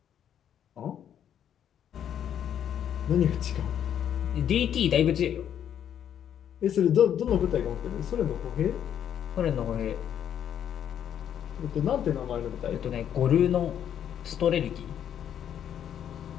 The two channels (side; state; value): right; quieter; 9.5 dB